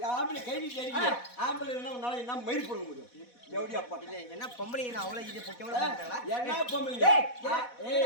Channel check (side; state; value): right; late; 4.1 ms